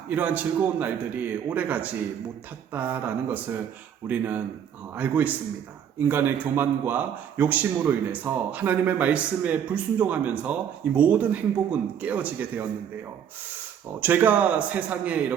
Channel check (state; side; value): quieter; left; 8.7 dB